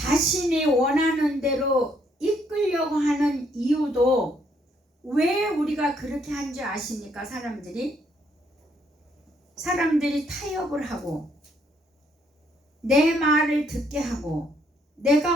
원하는 대로 이끌려고 하는 이유도 왜 우리가 그렇게 한 줄 아십니까? 사람들이 타협을 하고 내 말을 듣게 하고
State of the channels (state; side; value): normal; both; correlation 0.70